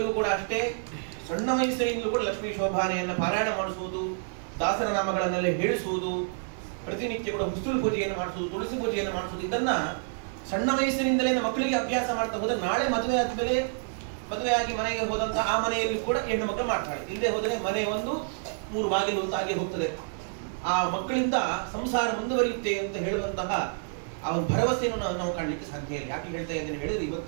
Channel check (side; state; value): left; silent; digital silence